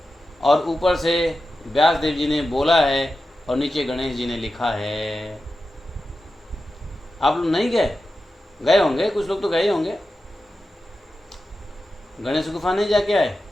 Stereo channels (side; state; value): both; normal; correlation 0.92